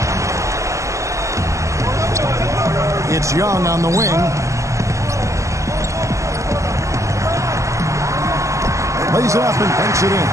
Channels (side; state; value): left; late; 0.15 ms